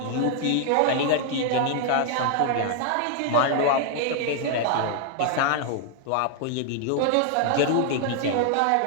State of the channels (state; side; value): different; both; correlation 0.00